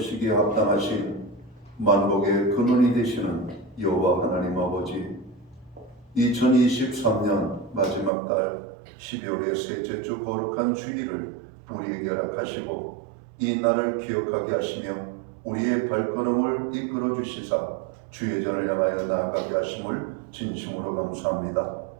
합당하신 만복의 근원이 되시는 여호와 하나님 아버지, 2023년 마지막 달 12월의 셋째 주 거룩한 주일을 우리에게 허락하시고 이 날을 기억하게 하시며 우리의 발걸음을 이끌어 주시사 주의 전을 향하여 나아가게 하심을 진심으로 감사합니다.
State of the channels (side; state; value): left; drops out; at 8.1 s